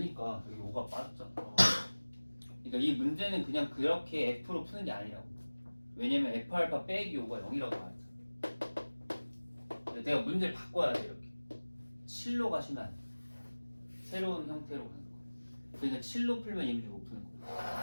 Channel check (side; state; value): both; inverted; correlation -1.00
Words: 여기 5가 빠졌잖아. 그러니까 이 문제는 그냥 그렇게 F로 푸는 게 아니라고. 왜냐면 F 알파 빼기 5가 0이라고 말했잖아. 내가 문제를 바꿔야 돼 이렇게. 7로 가시면 안 돼. 새로운 형태로 가는 거야. 그러니까 7로 풀면 이 문제 못 푸는 거야.